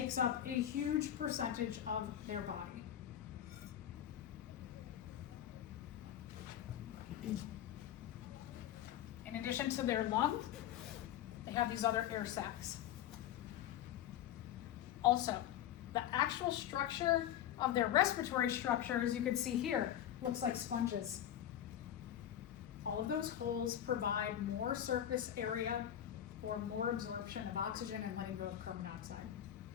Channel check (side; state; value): right; quieter; 11.0 dB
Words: up a huge percentage of their body. In addition to their lungs, they have these other air sacs. Also, the actual structure of their respiratory structure, as you can see here, looks like sponges. All of those holes provide more surface area for more absorption of oxygen and letting go of carbon dioxide.